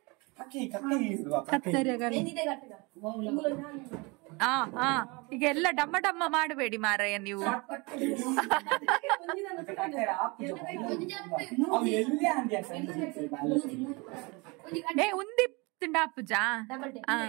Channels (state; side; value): quieter; left; 27.5 dB